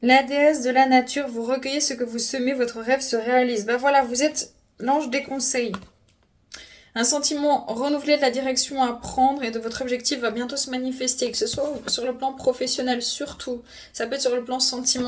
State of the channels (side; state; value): both; identical; correlation 1.00